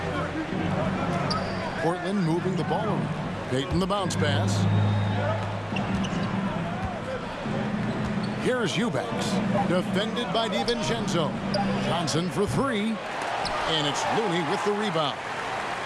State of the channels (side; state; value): both; identical; correlation 1.00